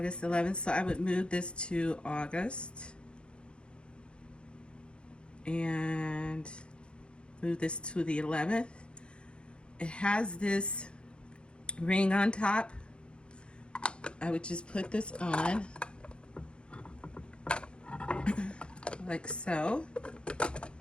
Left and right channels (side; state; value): right; late; 0.055 ms